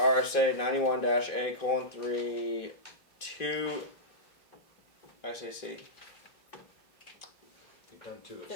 91-A:3 2 actually C. You've done 2 of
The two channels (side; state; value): right; late; 2.5 ms